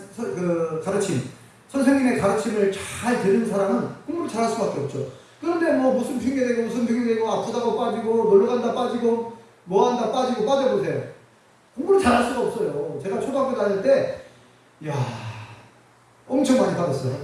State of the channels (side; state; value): both; identical; correlation 1.00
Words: 가르침, 선생님의 가르침을 잘 들은 사람은 공부를 잘 할 수밖에 없죠. 그런데 무슨 핑계대고 아프다고 빠지고 놀러간다 빠지고 뭐한다 빠지고 빠져보세요. 공부를 잘 할 수가 없어요. 제가 초등학교 다닐 때 엄청 많이 빠졌어요.